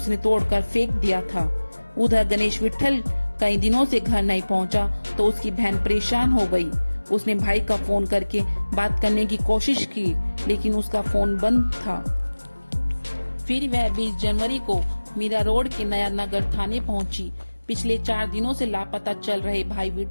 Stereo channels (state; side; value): inverted; both; correlation -1.00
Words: तोड़कर फेंक दिया था। उधर गणेश विट्ठल कई दिनों से घर नहीं पहुंचा तो उसकी बहन परेशान हो गई। उसने भाई का फोन करके बात करने की कोशिश की, लेकिन उसका फोन बंद था। फिर वह 20 जनवरी को मीरा रोड के नया नगर थाने पहुंची। पिछले 4 दिनों से लापता चल रहे भाई